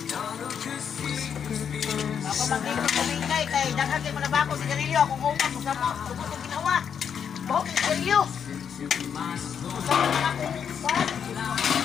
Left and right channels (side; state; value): right; quieter; 7.7 dB